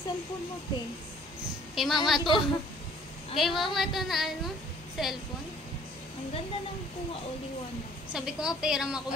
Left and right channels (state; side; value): normal; both; correlation 0.57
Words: mo, te. Kay mama to. Kay mama to na ano, cellphone. Ang ganda ng kuha o liwanag. Sabi ko nga, pera mo ako